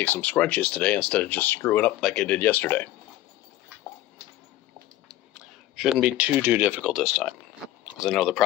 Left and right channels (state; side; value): quieter; right; 14.9 dB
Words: some scrunchies today instead of just screwing up like I did yesterday. Shouldn't be too difficult this time, because I know the